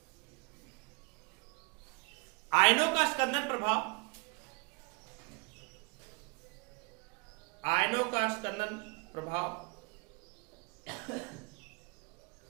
आयनों का स्कंदन प्रभाव, आयनों का स्कंदन प्रभाव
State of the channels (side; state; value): left; quieter; 30.0 dB